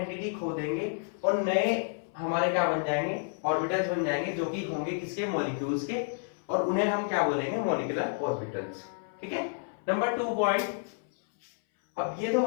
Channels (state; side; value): silent; right; 58 dB below the other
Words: खो देंगे और नए हमारे क्या बन जाएंगे, ऑर्बिटल्स बन जाएंगे जो कि होंगे किसके, मॉलिक्यूल्स के, और उन्हें हम क्या बोलेंगे, मॉलिक्यूलर ऑर्बिटल्स। ठीक है, नंबर 2 पॉइंट। अब ये तो